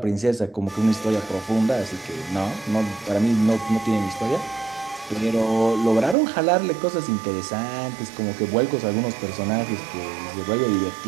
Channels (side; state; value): left; drops out; at 6.2 s